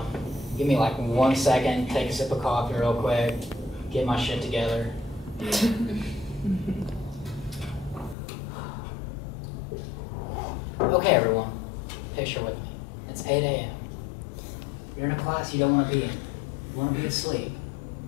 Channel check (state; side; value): drops out; right; at 8.2 s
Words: Give me like 1 second. Take a sip of coffee real quick. Get my shit together. Okay, everyone. Picture with me. It's 8 a.m. You're in a class you don't want to be in. You want to be asleep.